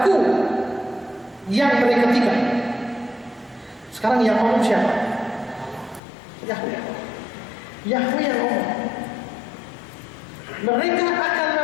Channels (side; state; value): right; drops out; at 6.0 s